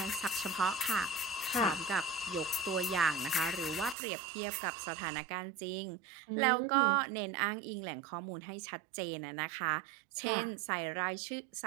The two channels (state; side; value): drops out; left; at 4.0 s